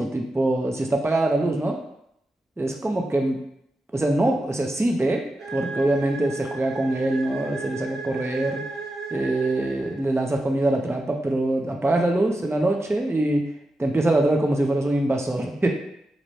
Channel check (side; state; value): both; normal; correlation 0.89